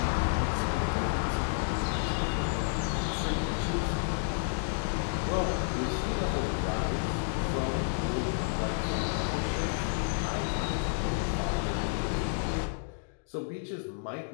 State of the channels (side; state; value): right; silent; digital silence